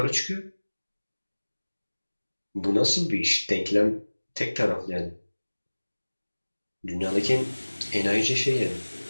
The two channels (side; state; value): both; inverted; correlation -1.00